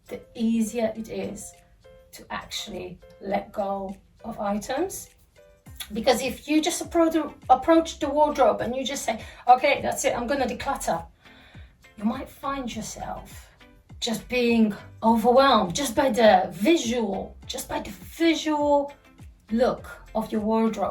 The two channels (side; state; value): both; identical; correlation 1.00